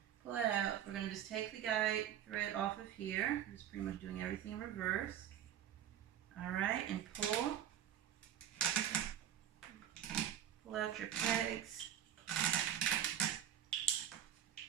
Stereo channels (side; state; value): left; quieter; 10.3 dB